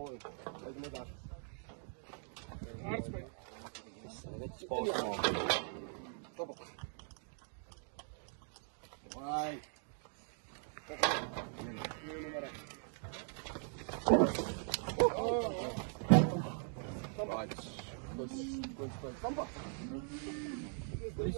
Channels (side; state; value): left; silent; 51 dB below the other